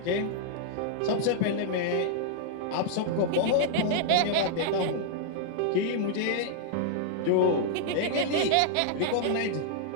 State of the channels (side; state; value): both; different; correlation -0.01